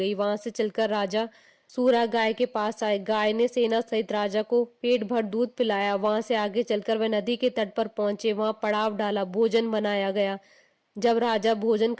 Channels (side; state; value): both; identical; correlation 1.00